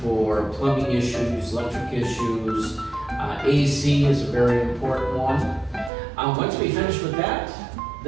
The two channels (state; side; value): drops out; left; at 5.9 s